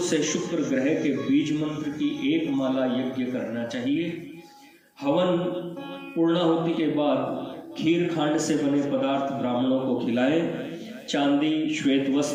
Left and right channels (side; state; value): both; identical; correlation 1.00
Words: से शुक्र ग्रह के बीज मंत्र की एक माला यज्ञ करना चाहिए। हवन पूर्णाहुति के बाद खीर खांड से बने पदार्थ ब्राह्मणों को खिलाएं। चांदी, श्वेत